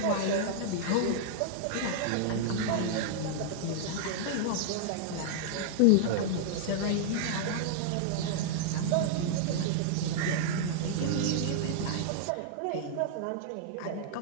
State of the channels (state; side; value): different; both; correlation -0.01